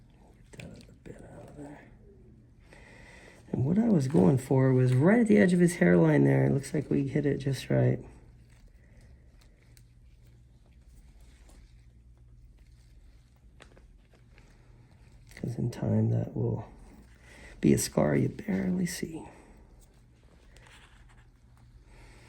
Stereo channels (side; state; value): both; identical; correlation 1.00